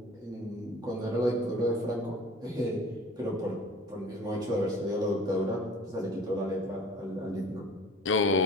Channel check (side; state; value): both; normal; correlation 0.44